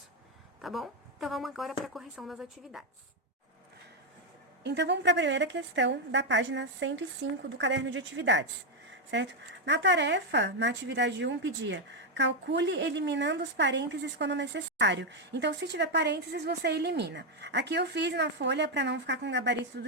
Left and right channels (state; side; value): normal; both; correlation 0.03